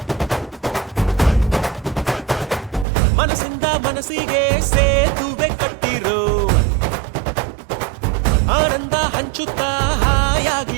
ಮನಸ್ಸಿಂದ ಮನಸ್ಸಿಗೆ ಸೇತುವೆ ಕಟ್ಟಿರೋ, ಆನಂದ ಹಂಚುತ್ತಾ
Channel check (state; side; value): drops out; left; at 2.9 s